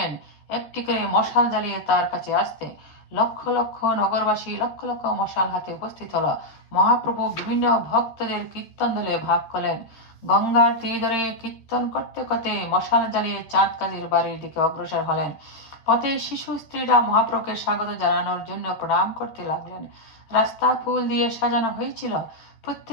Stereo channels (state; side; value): late; right; 13 ms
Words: একটি করে মশাল জ্বালিয়ে তার কাছে আসতে। লক্ষ লক্ষ নগরবাসী লক্ষ লক্ষ মশাল হাতে উপস্থিত হলো। মহাপ্রভু বিভিন্ন ভক্তদের কীর্তন দলে ভাগ করলেন। গঙ্গার তীর ধরে কীর্তন করতে করতে মশাল জ্বালিয়ে চাঁদ কাজীর বাড়ির দিকে অগ্রসর হলেন। পথে শিশু স্ত্রীরা মহাপ্রভুকে স্বাগত জানানোর জন্য প্রণাম করতে লাগলেন। রাস্তা ফুল দিয়ে সাজানো হয়েছিল।